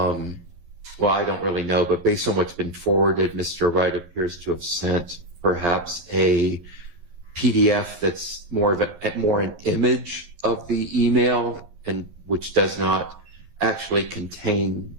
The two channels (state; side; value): late; left; 11 ms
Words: I don't really know, but based on what's been forwarded, Mr. Wright appears to have sent perhaps a PDF that's more an image of the email, and which does not actually contain